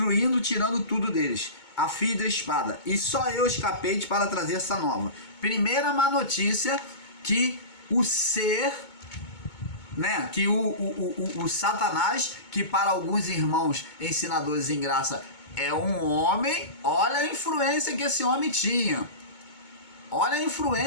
tirando tudo deles, a fio da espada. E só eu escapei para trazer essa nova. Primeira má notícia, que o ser, né, que o Satanás, que para alguns irmãos ensinadores em graça é um homem, olha a influência que esse homem tinha. Olha a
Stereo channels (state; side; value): late; right; 2.2 ms